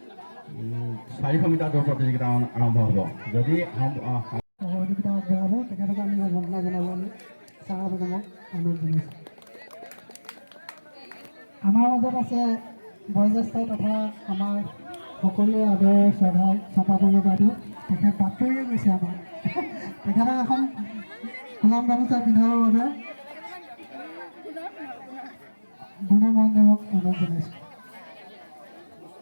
400 মিটাৰ দৌৰ প্ৰতিযোগিতা আৰম্ভ হ'ব। যদি সহযোগিতা আগবঢ়াব তেখেতক আমি সম্বৰ্ধনা জনাবলৈ চাইৰা বেগমক অনুৰোধ জনাইছোঁ। আমাৰ মাজত আছে বয়োজ্যেষ্ঠ তথা আমাৰ সকলোৱে আদৰৰ শ্ৰদ্ধাৰ চম্পা বৰুৱা বাইদেউ। তেখেত বাতৰিয়ে গৈছে আমাৰ। তেখেতক এখন গোলাম গামোচা পিন্ধাবৰ বাবে গুণৰ মহন্তদেৱক অনুৰোধ জনাইছোঁ।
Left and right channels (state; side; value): inverted; both; correlation -1.00